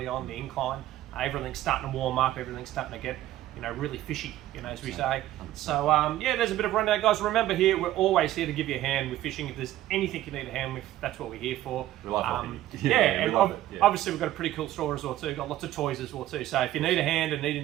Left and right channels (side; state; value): left; quieter; 14.2 dB